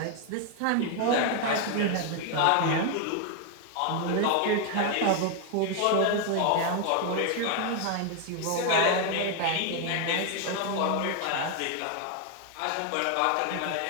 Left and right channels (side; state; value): both; different; correlation 0.01